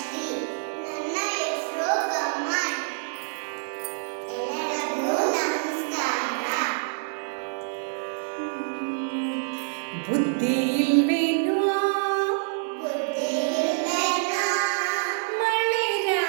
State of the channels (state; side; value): silent; left; 61 dB below the other